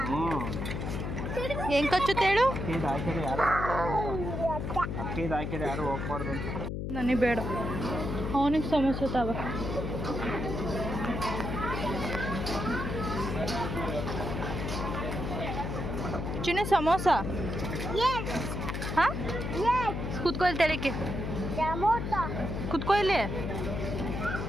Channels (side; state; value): left; noise; hum, 3 dB below the sound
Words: ಹೆಂಗ್ ಕಚ್ಚುತ್ತೆ ಹೇಳು? ಹಾಕಿದ್ರೆ ಯಾರು ಹೋಗ್ಬಾರ್ದು ಅಂತ. ನನಗೆ ಬೇಡ. ಅವನಿಗೆ ಸಮಸ್ಯೆ ತಾವ. ಚಿನ್ನ ಸಮೋಸ. ಹಾಂ, ಕುತ್ಕೊ ಇಲ್ಲಿ. ತೆಳಕ್ಕೆ ಕುತ್ಕೊ ಇಲ್ಲಿ.